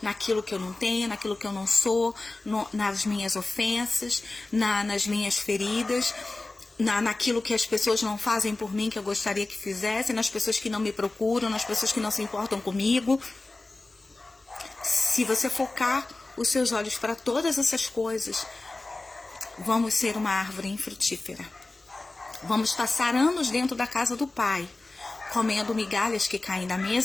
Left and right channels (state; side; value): quieter; right; 3.1 dB